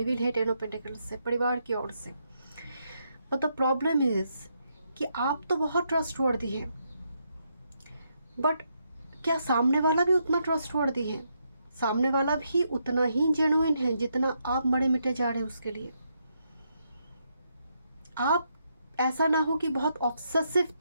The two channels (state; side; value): inverted; both; correlation -0.79